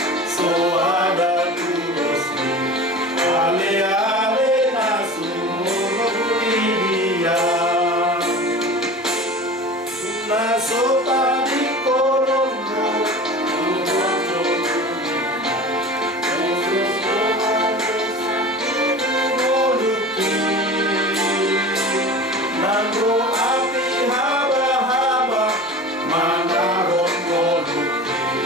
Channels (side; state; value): both; normal; correlation 0.36